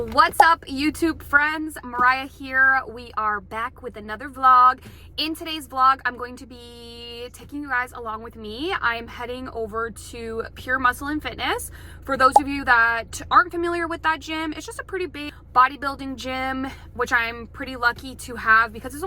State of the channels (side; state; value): both; identical; correlation 1.00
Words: up, YouTube friends? Mariah here. We are back with another vlog. In today's vlog, I'm going to be taking you guys along with me. I'm heading over to Pure Muscle and Fitness. For those of you that aren't familiar with that gym, it's just a pretty big bodybuilding gym, which I'm pretty lucky to have because it's